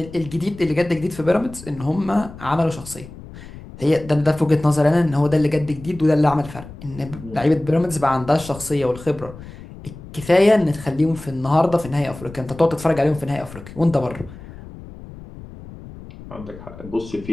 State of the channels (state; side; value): noise; left; rumble, 16 dB below the sound